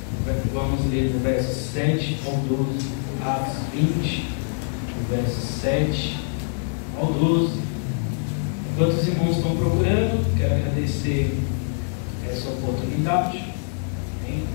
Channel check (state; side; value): silent; right; digital silence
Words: Vamos ler do verso 7 ao 12. Atos 20, do verso 7 ao 12. Enquanto os irmãos estão procurando, quero agradecer essa oportunidade. Amém?